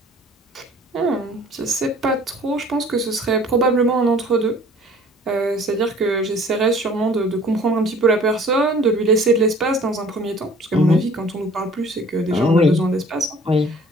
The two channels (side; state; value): both; normal; correlation 0.51